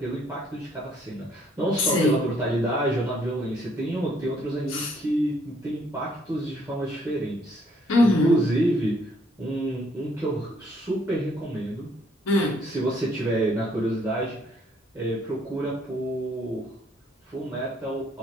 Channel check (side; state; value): both; normal; correlation 0.66